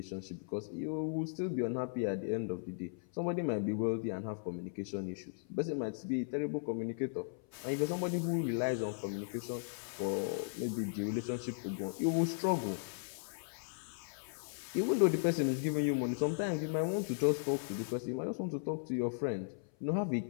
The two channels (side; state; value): right; silent; 53 dB below the other